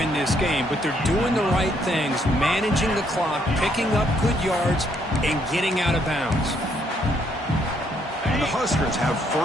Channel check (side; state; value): both; normal; correlation 0.71